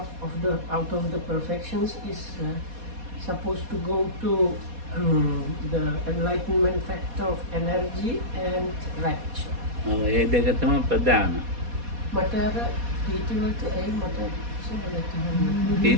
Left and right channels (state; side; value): late; left; 4.2 ms